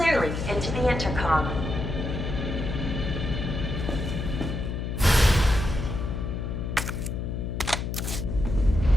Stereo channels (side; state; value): left; noise; hum, 3 dB below the sound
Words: into the intercom.